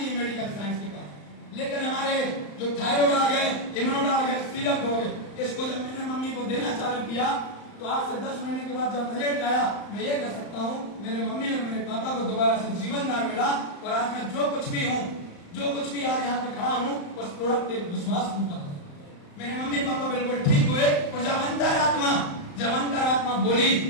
है मेडिकल साइंस के पास। लेकिन हमारे जो थायराइड आ गए, इम्यूनोड आ गए, सिरप हो गए, इसको जब मैंने मम्मी को देना चालू किया तो आज से 10 महीने के बाद जब रिजल्ट आया, मैं ये कह सकता हूँ मेरे मम्मी और मेरे पापा को दोबारा से जीवनदान मिला। और आज मैं जो कुछ भी हूँ, जो कुछ भी आज यहाँ पे खड़ा हूँ, उस प्रोडक्ट के विश्वास पर मेरे मम्मी पापा बिल्कुल ठीक हुए। और जब अंतरात्मा बोली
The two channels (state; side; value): late; right; 35 ms